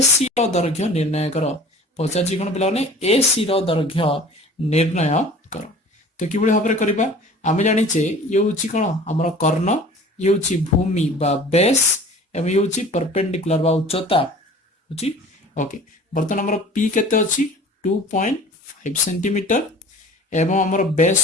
रो दैर्घ्य निर्णय करो पचारछि कोन पिला ने एसी रो दैर्घ्य निर्णय करो। तो किबळे भाबरे करबा आमे जानिचे ये होची कोन हमर कर्ण ये होची भूमि बा बेस एवं ये होची परपेंडिकुलर बा उच्चता होची ओके। बर्तन हमर पी केते अछि 2.5 सेंटीमीटर एवं हमर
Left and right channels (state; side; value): normal; both; correlation 0.44